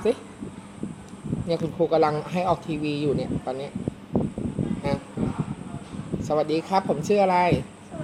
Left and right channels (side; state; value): both; identical; correlation 1.00